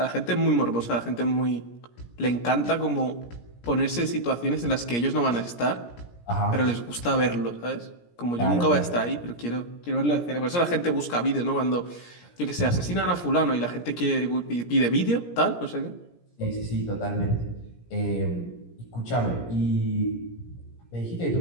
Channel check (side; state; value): right; late; 17 ms